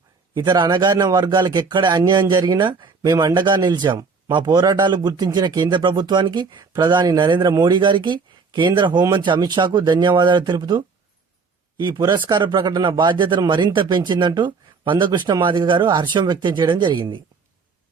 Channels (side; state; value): left; quieter; 4.9 dB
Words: ఇతర అణగారిన వర్గాలకు ఎక్కడ అన్యాయం జరిగినా మేము అండగా నిలిచాం. మా పోరాటాలు గుర్తించిన కేంద్ర ప్రభుత్వానికి, ప్రధాని నరేంద్ర మోడీ గారికి, కేంద్ర హోంమంత్రి అమిత్ షాకు ధన్యవాదాలు తెలుపుతూ ఈ పురస్కార ప్రకటన బాధ్యతను మరింత పెంచిందంటూ మందకృష్ణ మాదిగ గారు హర్షం వ్యక్తం చేయడం జరిగింది.